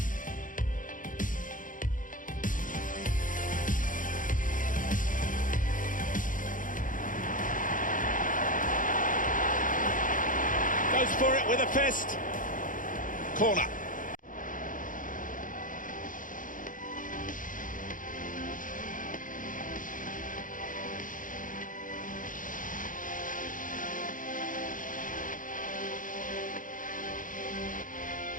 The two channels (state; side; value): late; right; 0.39 ms